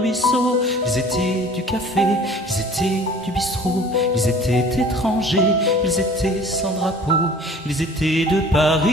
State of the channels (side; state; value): both; normal; correlation 0.47